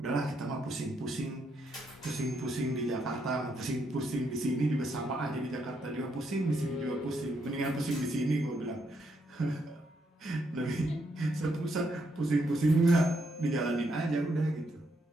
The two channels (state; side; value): normal; both; correlation 0.77